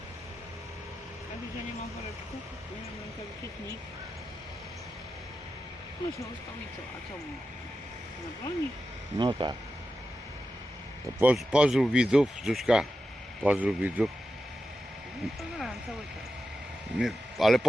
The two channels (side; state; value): both; normal; correlation 0.91